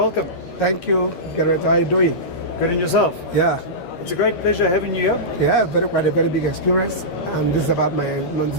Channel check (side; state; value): right; late; 13 ms